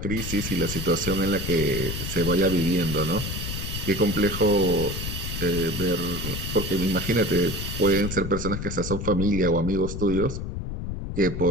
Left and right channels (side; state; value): left; noise; rumble, 5 dB below the sound